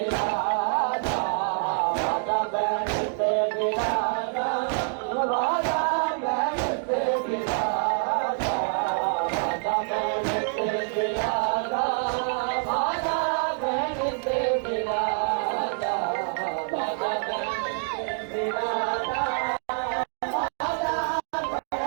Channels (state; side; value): silent; left; 57 dB below the other